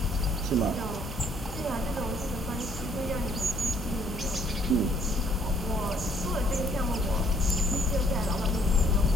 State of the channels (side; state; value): both; normal; correlation 0.63